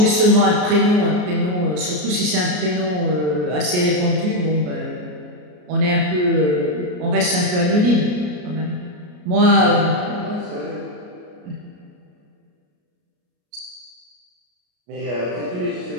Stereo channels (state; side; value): late; left; 33 ms